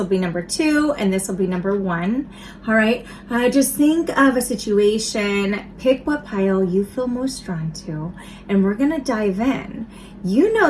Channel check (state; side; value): identical; both; correlation 1.00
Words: be number 2, and this will be number 1. All right, just think of a situation, pick what pile you feel most drawn to, and we're gonna dive in. You